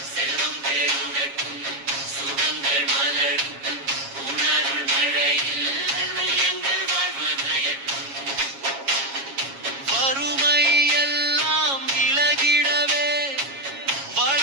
செல்வம் பெருகட்டும் சுகங்கள் மலரும் உன்னருள் மழையில் எங்கள் வாழ்வு நயக்கும். வறுமை எல்லாம் விலகிடவே,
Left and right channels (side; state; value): left; late; 7.3 ms